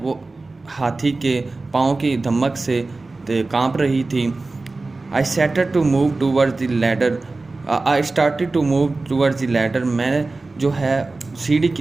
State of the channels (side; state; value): left; quieter; 3.4 dB